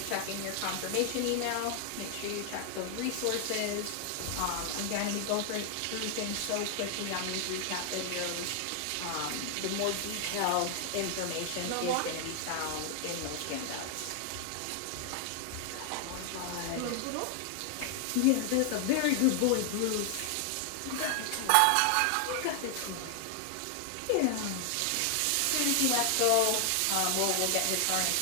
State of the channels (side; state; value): both; different; correlation 0.00